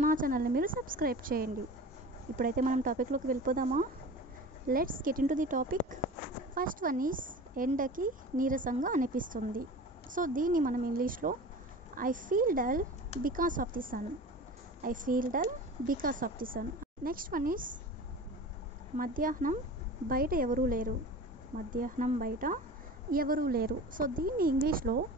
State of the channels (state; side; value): normal; both; correlation 0.36